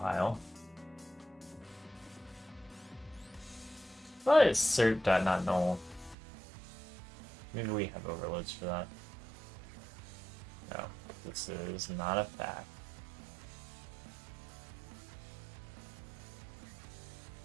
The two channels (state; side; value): drops out; left; at 6.2 s